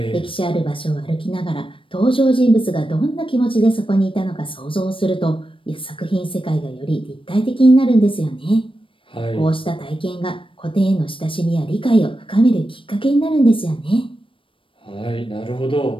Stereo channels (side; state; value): right; late; 0.25 ms